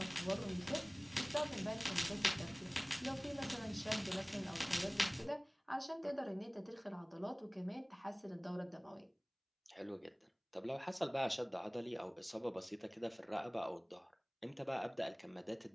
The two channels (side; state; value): both; identical; correlation 1.00